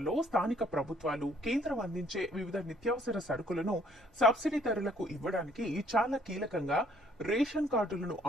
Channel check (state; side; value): normal; both; correlation 0.63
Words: స్థానిక ప్రభుత్వాలు కేంద్రం అందించే వివిధ నిత్యావసర సరుకులను సబ్సిడీ ధరలకు ఇవ్వడానికి చాలా కీలకంగా రేషన్ కార్డులను